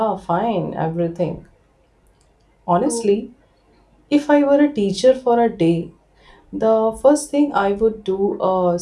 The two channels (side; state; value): both; identical; correlation 1.00